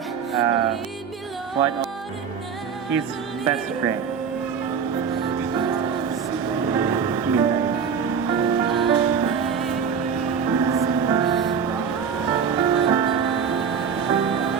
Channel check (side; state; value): left; quieter; 6.7 dB